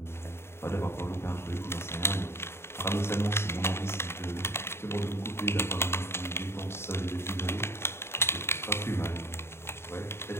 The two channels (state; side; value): late; right; 0.12 ms